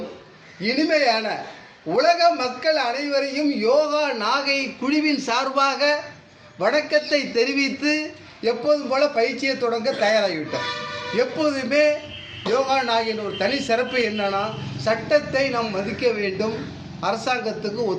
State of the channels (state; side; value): identical; both; correlation 1.00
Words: இனிமையான உலக மக்கள் அனைவரையும் யோகா நாகை குழுவின் சார்பாக வணக்கத்தை தெரிவித்து எப்போதும் போல பயிற்சியை தொடங்க தயாராகிவிட்டோம். எப்போதுமே யோகா நாகின் ஒரு தனி சிறப்பு என்னன்னா, சட்டத்தை நாம் மதிக்க வேண்டும், அரசாங்கத்துக்கு